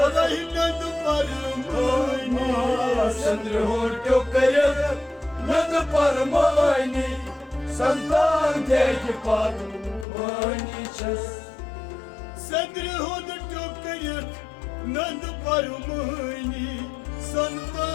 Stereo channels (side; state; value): right; drops out; at 10.1 s